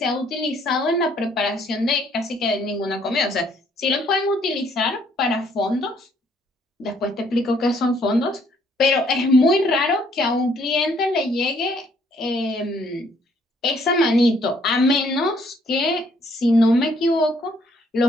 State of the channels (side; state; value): both; normal; correlation 0.66